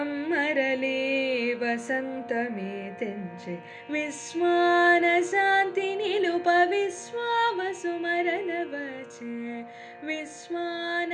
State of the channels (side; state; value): both; identical; correlation 1.00